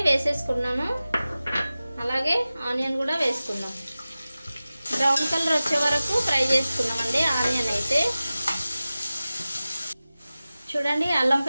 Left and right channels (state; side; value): inverted; both; correlation -0.96